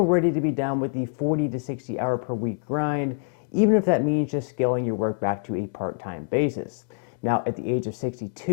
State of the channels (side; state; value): right; silent; digital silence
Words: ready to be done with the 40 to 60 hour per week grind, even if that means just scaling your work back to a part-time basis. Now, at the age of